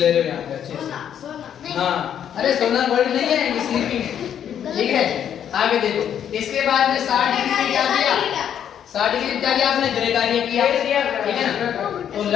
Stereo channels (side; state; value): right; quieter; 9.3 dB